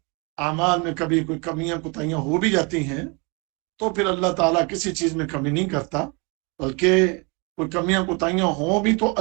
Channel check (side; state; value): left; quieter; 31.0 dB